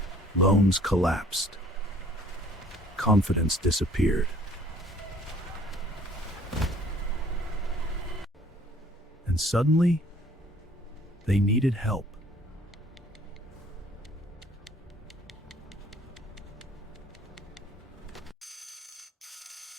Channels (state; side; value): normal; both; correlation 0.56